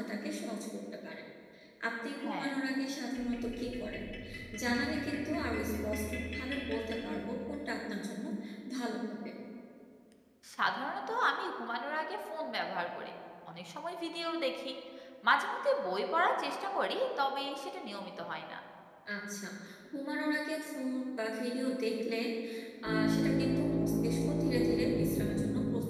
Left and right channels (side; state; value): both; identical; correlation 1.00